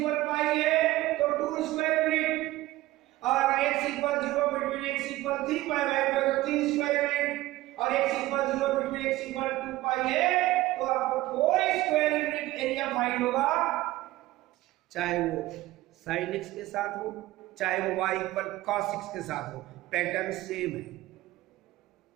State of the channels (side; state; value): left; quieter; 17.2 dB